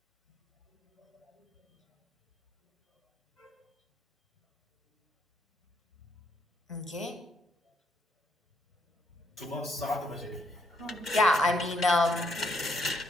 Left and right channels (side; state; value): both; normal; correlation 0.74